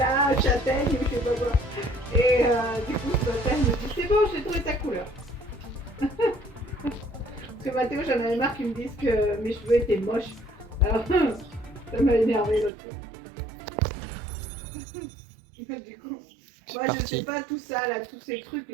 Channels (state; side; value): drops out; left; at 12.7 s